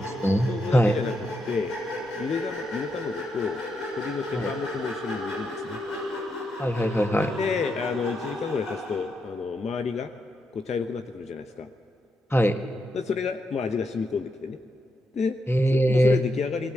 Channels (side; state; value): both; normal; correlation 0.82